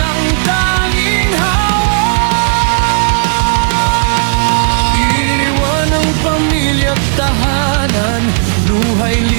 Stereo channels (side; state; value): left; silent; digital silence